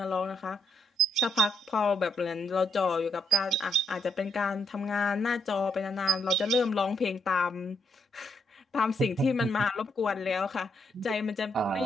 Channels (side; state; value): both; normal; correlation 0.75